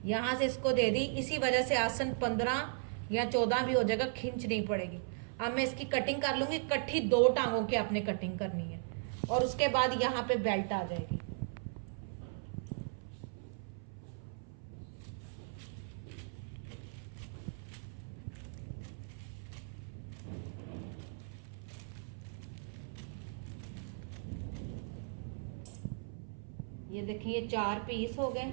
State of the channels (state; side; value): silent; left; 53 dB below the other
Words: यहाँ से इसको दे दी, इसी वजह से आसन 15 या 14 भी हो जाएगा, खिंच नहीं पड़ेगी। अब मैं इसकी कटिंग कर लूंगी। इकट्ठी 2 टांगों की आपने कटिंग करनी है और उसके बाद यहाँ पे बेल्ट आ जाएगी। ये देखिए, ये 4 पीस हो गए।